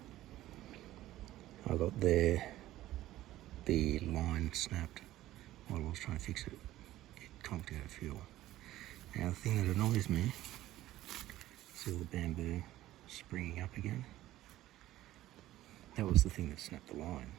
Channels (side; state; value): left; quieter; 14.9 dB